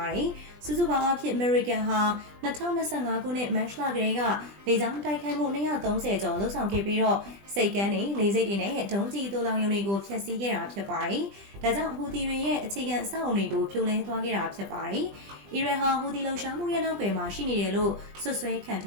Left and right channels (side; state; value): left; late; 20 ms